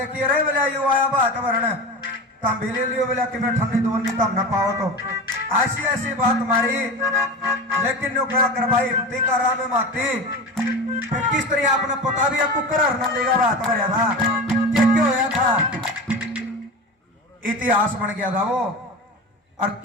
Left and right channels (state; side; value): normal; both; correlation 0.28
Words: रे, बोला यू आया बात भरने तम भी ले लियो, बोला कि मैं ठंडी दोन नहीं तम न पाओ तो ऐसी ऐसी बात मारी। लेकिन नो क्या कर भाई हिम्मती का राम माती, फिर किस तरह आपने पता भी आपको कर देगा बात भरया था क्या होया था, इतिहास बन गया था वो। और